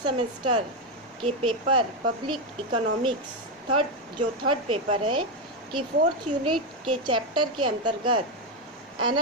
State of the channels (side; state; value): both; normal; correlation 0.07